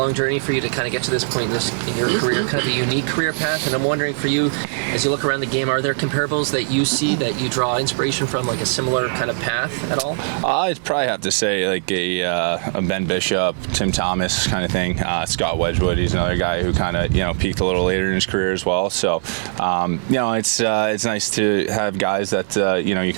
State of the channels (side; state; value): left; silent; digital silence